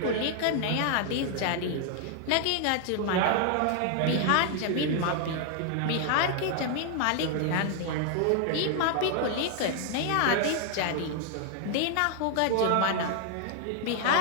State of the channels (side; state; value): both; different; correlation 0.00